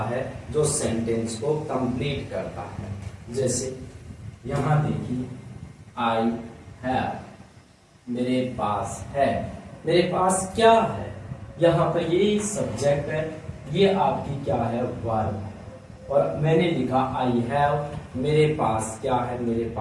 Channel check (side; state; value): both; identical; correlation 1.00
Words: है जो सेंटेंस को कंप्लीट करता है। जैसे यहां देखिए, आई हैव, मेरे पास है। मेरे पास क्या है? यहाँ पर ये सब्जेक्ट है, ये आपकी क्या है? वर्ब है। और मैंने लिखा आई हैव, मेरे पास क्या है? मेरे